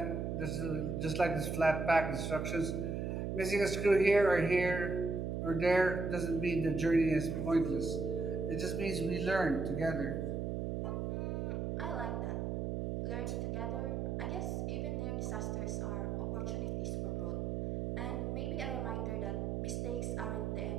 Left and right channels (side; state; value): right; noise; hum, 1 dB below the sound